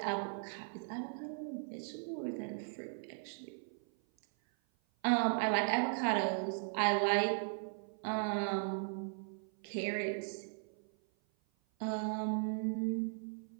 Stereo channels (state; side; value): silent; left; 52 dB below the other